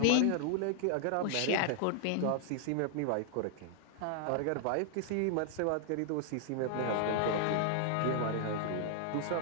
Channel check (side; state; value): both; different; correlation -0.01